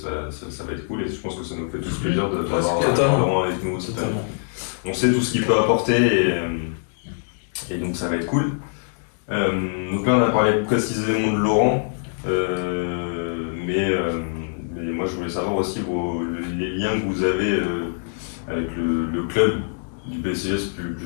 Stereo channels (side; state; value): right; silent; digital silence